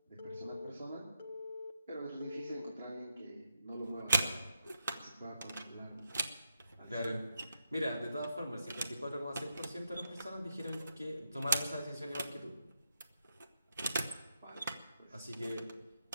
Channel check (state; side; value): inverted; both; correlation -0.84